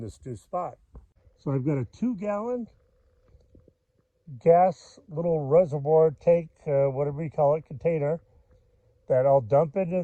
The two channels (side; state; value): both; identical; correlation 1.00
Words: new spot. So I've got a 2-gallon gas little reservoir tank, whatever you call it, container, that I'll dump into